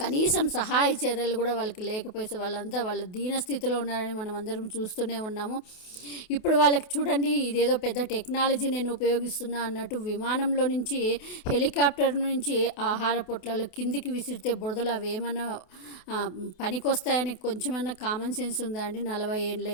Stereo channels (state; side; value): late; right; 28 ms